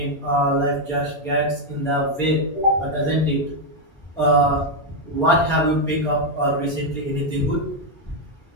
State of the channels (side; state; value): both; normal; correlation 0.02